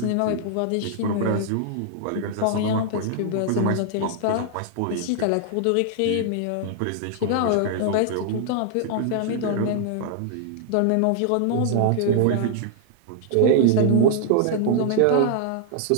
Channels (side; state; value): both; different; correlation -0.01